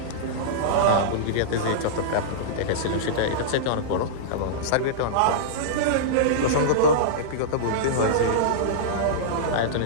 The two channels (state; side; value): different; both; correlation -0.03